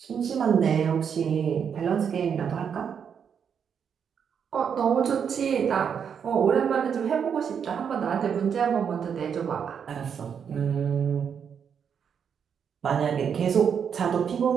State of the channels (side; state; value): left; quieter; 7.4 dB